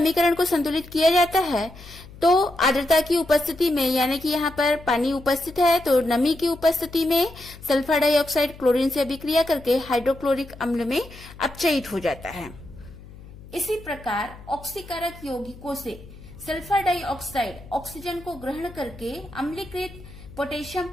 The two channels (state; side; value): noise; left; hum, 18 dB below the sound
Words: को संतुलित किया जाता है तो आर्द्रता की उपस्थिति में, यानी कि यहाँ पर पानी उपस्थित है तो नमी की उपस्थिति में सल्फर डाइऑक्साइड क्लोरीन से अभिक्रिया करके हाइड्रोक्लोरिक अम्ल में अपचयित हो जाता है। इसी प्रकार ऑक्सीकारक यौगिकों से सल्फर डाइऑक्साइड ऑक्सीजन को ग्रहण करके अम्लीकृत पोटेशियम